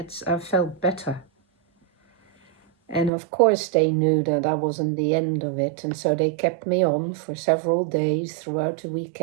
I felt better. And of course they knew that I wasn't the end of it, and so they kept me on for several days throughout the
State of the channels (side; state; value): left; drops out; at 3.1 s